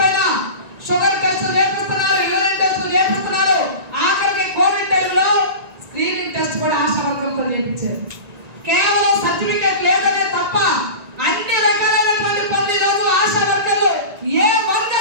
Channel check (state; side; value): late; left; 1.9 ms